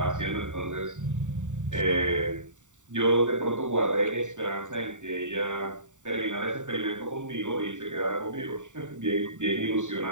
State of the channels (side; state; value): left; late; 0.86 ms